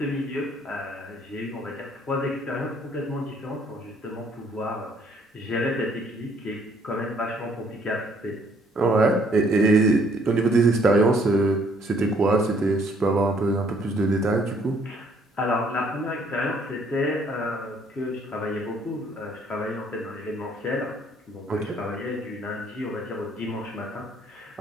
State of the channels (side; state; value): both; normal; correlation 0.64